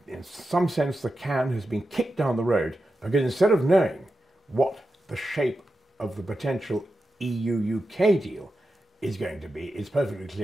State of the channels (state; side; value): normal; both; correlation 0.90